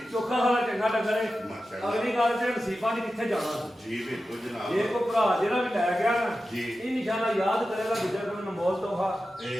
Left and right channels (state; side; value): normal; both; correlation 0.92